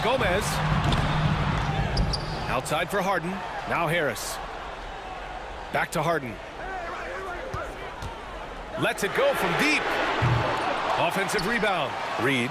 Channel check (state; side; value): identical; both; correlation 1.00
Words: Gomez. Outside for Harden. Now Harris. Back to Harden. Lets it go from deep. Offensive rebound.